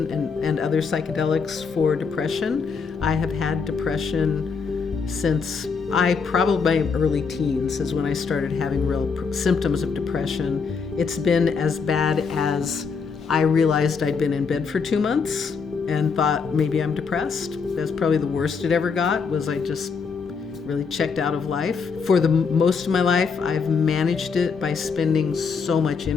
and other psychedelics for depression. I have had depression since probably my early teens is when I started having real symptoms of depression. It's been as bad as I realized I'd been in bed for 2 months and thought maybe I'm depressed. That's probably the worst it ever got, was I just really checked out of life. For the most of my life, I've managed it by spending so much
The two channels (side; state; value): right; quieter; 5.4 dB